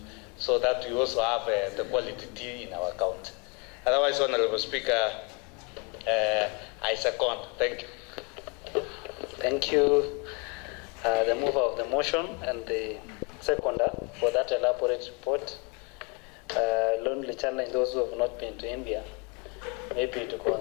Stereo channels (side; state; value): right; quieter; 32.6 dB